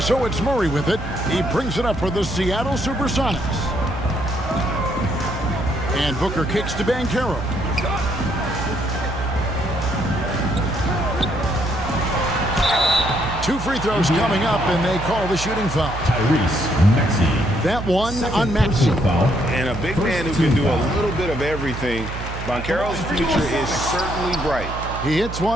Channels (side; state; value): right; noise; hum, 8 dB below the sound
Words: so it's Murray with it. He brings it up for the Seattle Supersonics. And Booker kicks to Banchero. Two free throws coming up, and they call the shooting foul. Tyrese Maxey. That one on Maxey. And a big man who can do a little bit of everything. Banchero's future is certainly bright. He hits